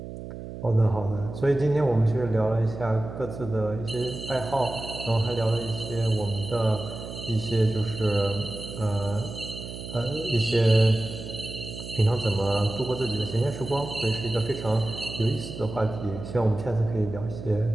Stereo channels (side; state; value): right; noise; hum, 10 dB below the sound